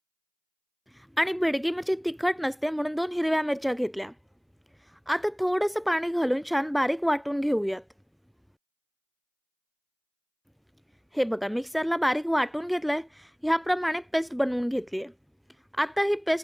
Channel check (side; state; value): both; identical; correlation 1.00